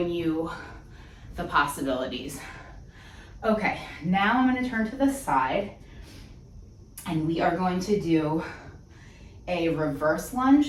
you the possibilities. Okay, now I'm gonna turn to the side and we are going to do a reverse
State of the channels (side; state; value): both; identical; correlation 1.00